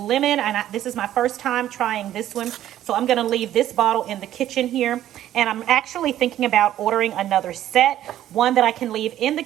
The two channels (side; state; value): left; quieter; 12.4 dB